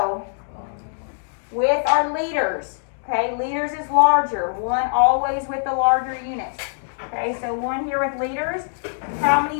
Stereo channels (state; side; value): silent; right; digital silence